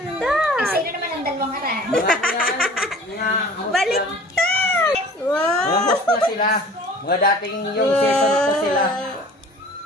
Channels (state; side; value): normal; both; correlation 0.46